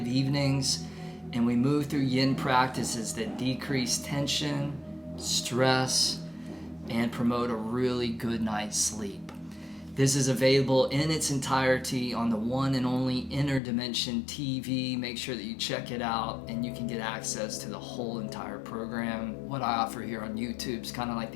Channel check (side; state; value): right; drops out; at 13.6 s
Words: evenings and we move through yin practices that decrease tension, stress, and promote a really good night's sleep. This is available in its entirety on the one and only Inner Dimension TV. Make sure that you check it out and you can get access to the whole entire program. What I offer here on YouTube is kind of like